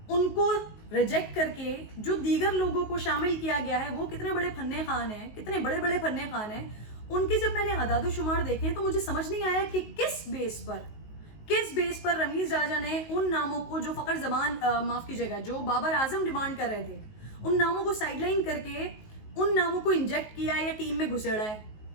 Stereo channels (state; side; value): late; right; 19 ms